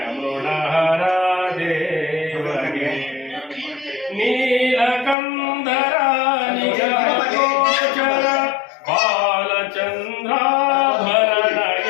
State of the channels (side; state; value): right; drops out; at 5.2 s